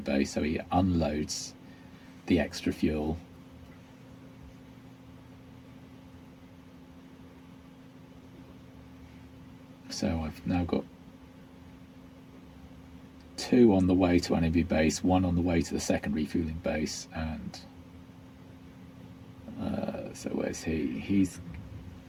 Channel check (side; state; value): both; identical; correlation 1.00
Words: so he unloads the extra fuel. So I've now got 2 on the way to enemy base, 1 on the way to the second refueling base, and so where's he? He's